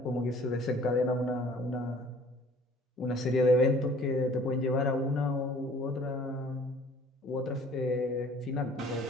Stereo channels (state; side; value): normal; both; correlation 0.53